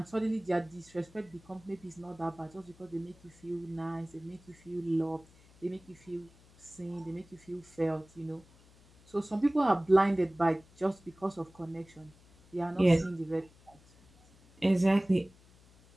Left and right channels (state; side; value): noise; left; hum, 26 dB below the sound